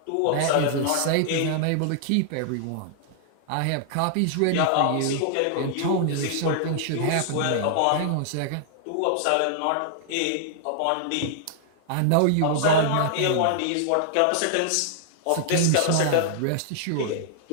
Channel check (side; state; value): both; different; correlation -0.01